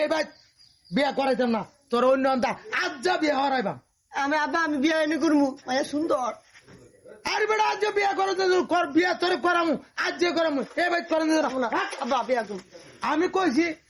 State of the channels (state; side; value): identical; both; correlation 1.00